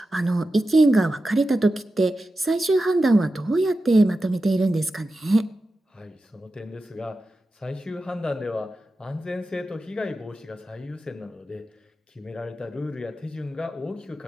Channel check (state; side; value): normal; both; correlation 0.92